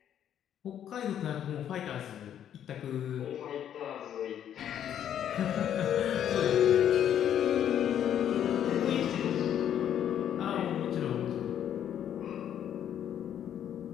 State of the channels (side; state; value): right; quieter; 9.9 dB